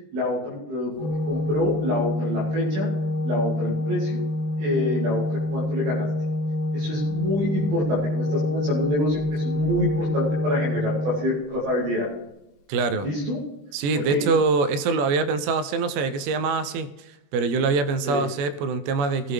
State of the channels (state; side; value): late; left; 21 ms